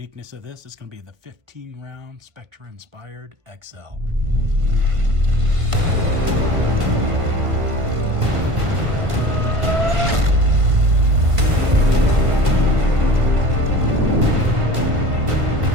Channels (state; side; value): late; left; 1.5 ms